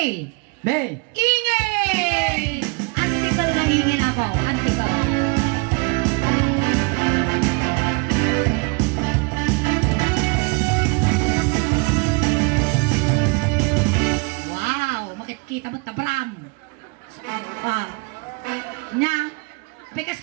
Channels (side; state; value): left; quieter; 29.9 dB